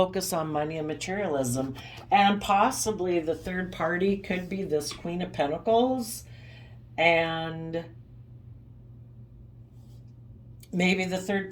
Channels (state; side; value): identical; both; correlation 1.00